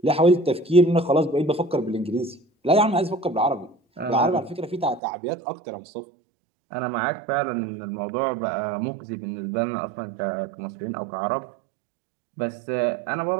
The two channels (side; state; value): left; drops out; at 5.0 s